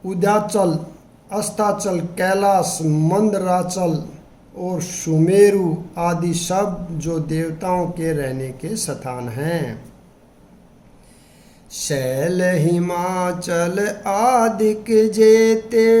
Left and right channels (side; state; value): both; identical; correlation 1.00